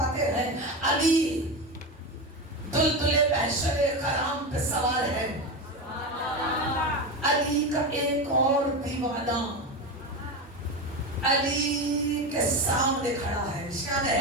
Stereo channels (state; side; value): normal; both; correlation 0.19